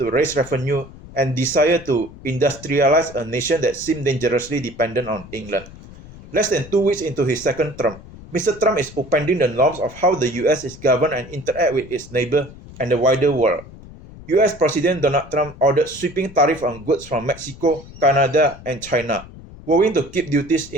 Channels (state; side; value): noise; left; rumble, 18 dB below the sound